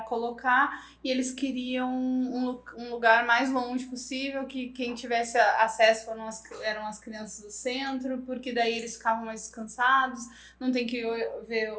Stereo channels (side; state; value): both; identical; correlation 1.00